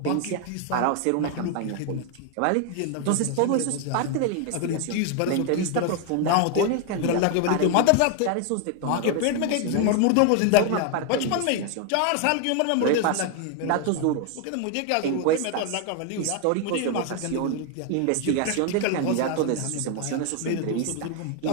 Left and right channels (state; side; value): different; both; correlation 0.00